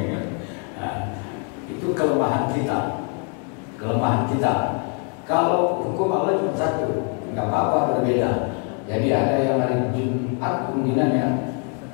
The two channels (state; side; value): quieter; right; 39.3 dB